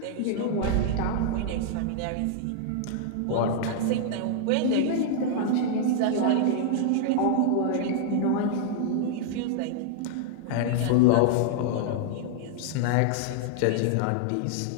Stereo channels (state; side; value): different; both; correlation -0.01